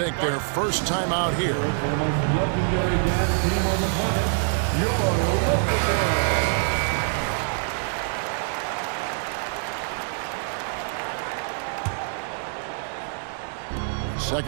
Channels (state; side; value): silent; left; 62 dB below the other